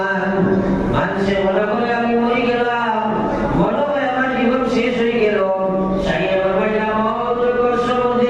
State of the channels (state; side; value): identical; both; correlation 1.00